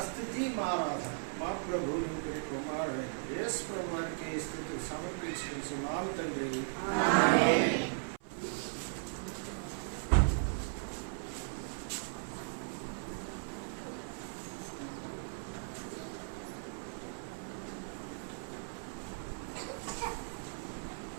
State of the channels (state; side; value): silent; left; 53 dB below the other